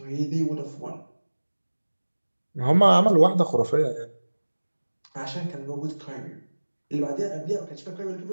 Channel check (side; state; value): both; inverted; correlation -1.00